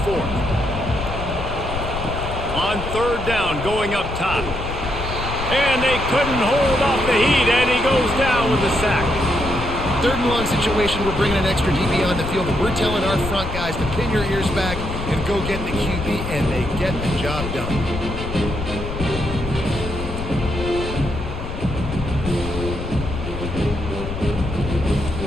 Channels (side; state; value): left; noise; rumble, 6 dB below the sound